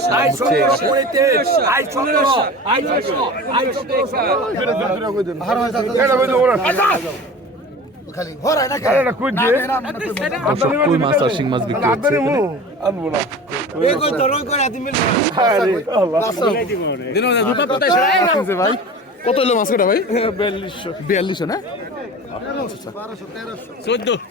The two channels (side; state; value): both; normal; correlation 0.36